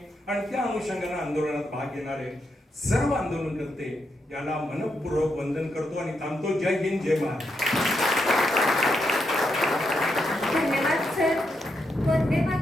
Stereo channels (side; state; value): both; normal; correlation 0.82